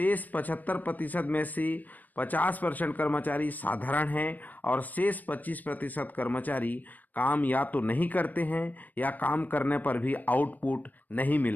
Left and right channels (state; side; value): late; right; 0.083 ms